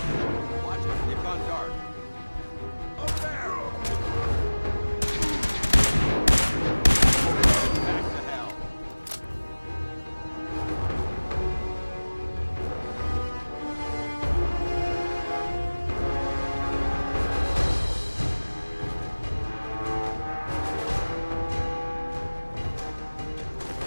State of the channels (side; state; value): both; inverted; correlation -1.00